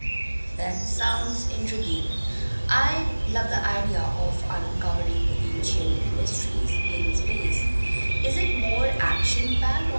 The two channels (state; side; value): inverted; both; correlation -1.00